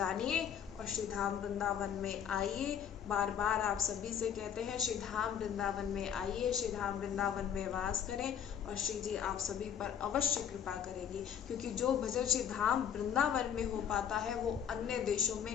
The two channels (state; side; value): quieter; right; 8.6 dB